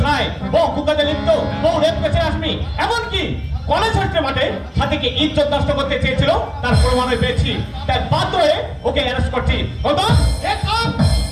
ছায় বহু কুকাতে লিপ্ত, বহু রেপ কেসে আসমি, এমনকি কলেজ হস্টের মাঠে সাথীকে ইজ্জত নষ্ট করতে চেয়েছিল, তার প্রমাণও পেয়েছি। তাই বাধ্য হয়ে ওকে অ্যারেস্ট করছি।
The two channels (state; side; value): identical; both; correlation 1.00